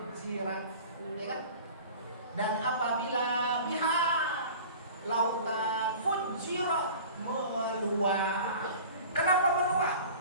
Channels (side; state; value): both; inverted; correlation -0.41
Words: Ya kan? Dan apabila bihar, lautan, fujirat, meluap. Kenapa meluap?